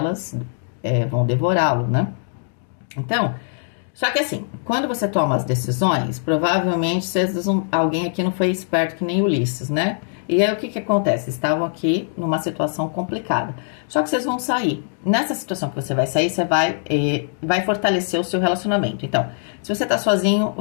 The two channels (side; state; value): right; silent; digital silence